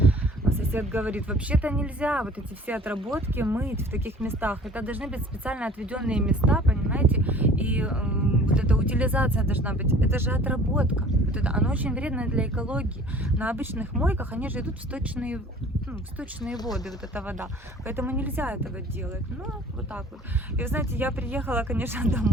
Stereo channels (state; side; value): normal; both; correlation 0.48